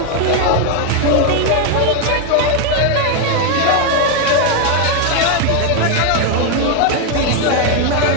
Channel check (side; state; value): both; different; correlation 0.01